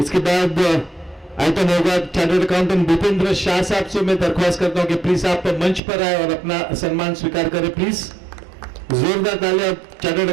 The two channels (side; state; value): left; drops out; at 5.8 s